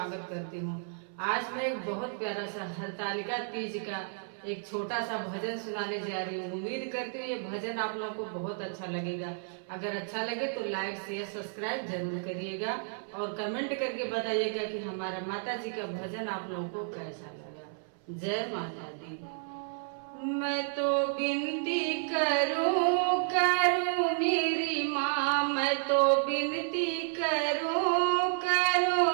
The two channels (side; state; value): left; silent; 57 dB below the other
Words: करती हूँ। आज मैं एक बहुत प्यारा सा हरतालिका तीज का एक छोटा सा भजन सुनाने जा रही हूँ। उम्मीद करती हूँ ये भजन आप लोगों को बहुत अच्छा लगेगा। अगर अच्छा लगे तो लाइक शेयर सब्सक्राइब जरूर करिएगा और कमेंट करके बताइएगा कि हमारा माता जी का भजन आप लोगों को कैसा लगा। जय माता दी। मैं तो विनती करूं मेरी माँ, मैं तो विनती करूं